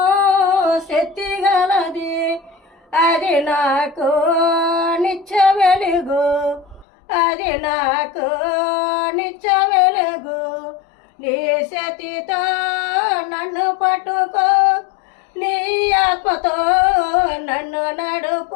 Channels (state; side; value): drops out; right; at 6.9 s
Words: శక్తి గలది, అది నాకు నిత్య వెలుగు, అది నాకు నిత్య వెలుగు. నీ శక్తితో నన్ను పట్టుకో, నీ ఆత్మతో నన్ను